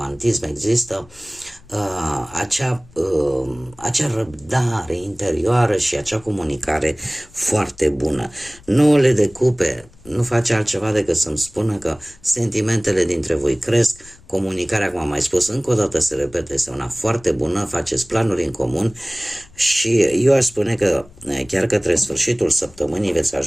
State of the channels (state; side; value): noise; left; rumble, 25 dB below the sound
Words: există acea răbdare interioară și acea comunicare foarte bună. 9 de cupe nu face altceva decât să-mi spună că sentimentele dintre voi cresc, comunicarea, cum am mai spus, încă o dată se repete, este una foarte bună, faceți planuri în comun și eu aș spune că chiar către sfârșitul săptămânii veți